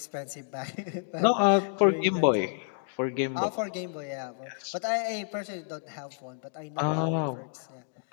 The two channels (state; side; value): silent; right; digital silence